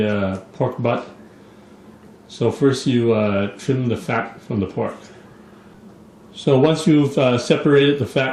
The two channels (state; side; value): identical; both; correlation 1.00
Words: pork butt. So first you trim the fat from the pork. So once you've separated the